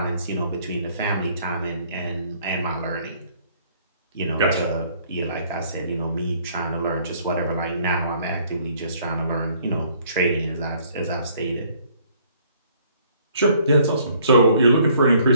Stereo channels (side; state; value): both; inverted; correlation -0.61